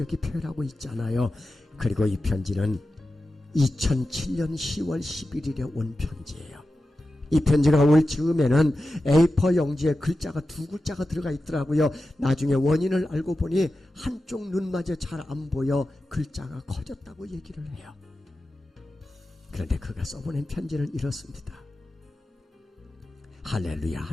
표현하고 있잖아요. 그리고 이 편지는 2007년 10월 11일에 온 편지예요. 이 편지가 올 즈음에는 A4 용지에 글자가 2글자가 들어가 있더라고요. 나중에 원인을 알고 보니 한쪽 눈마저 잘 안 보여 글자가 커졌다고 얘기를 해요. 그런데 그가 써보낸 편지는 이렇습니다. 할렐루야,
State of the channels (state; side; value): normal; both; correlation 0.92